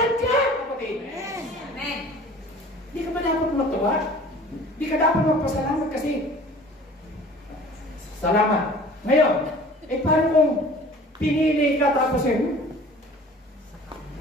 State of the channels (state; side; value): normal; both; correlation 0.46